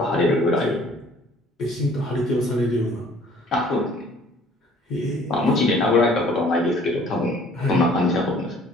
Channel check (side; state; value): both; normal; correlation 0.55